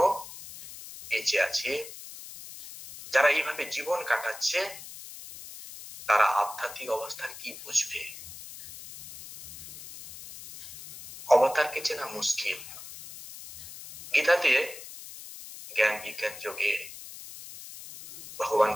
বেঁচে আছে, যারা এইভাবে জীবন কাটাচ্ছে, তারা আধ্যাত্মিক অবস্থার কি বুঝবে? অবতারকে চেনা মুশকিল। গীতাতে জ্ঞান বিজ্ঞান যোগে ভগবান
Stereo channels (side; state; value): left; noise; hiss, 14 dB below the sound